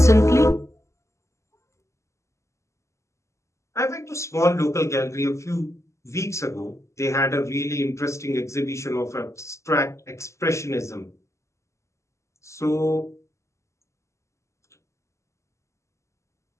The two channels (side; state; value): right; late; 0.14 ms